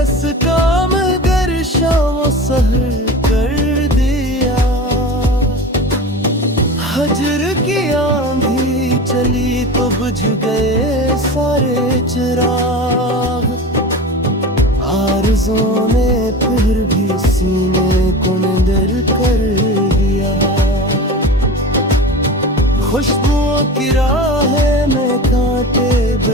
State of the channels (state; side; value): normal; both; correlation 0.31